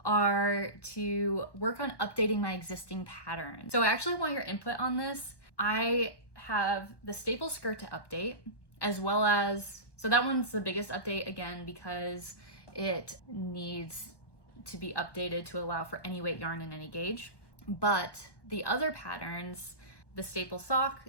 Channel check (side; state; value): right; late; 1.1 ms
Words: are to work on updating my existing patterns. So I actually want your input on this. I have the staple skirt to update, as well as, so that one's the biggest update again because it needs to be updated to allow for any weight yarn and any gauge. But the other patterns, the staple sock